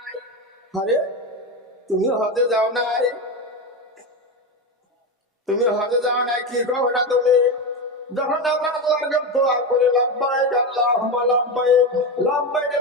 আরে তুমি হজে যাও নাই? তুমি হজে যাও নাই কি কও না তুমি? যখন আমরা আল্লাহর কাছে দোয়া করি, লাব্বাইক আল্লাহুম্মা লাব্বাইক, লাব্বাইক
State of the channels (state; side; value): normal; both; correlation 0.16